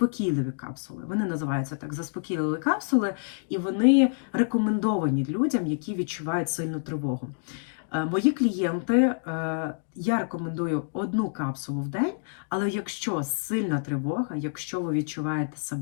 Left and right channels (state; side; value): silent; right; digital silence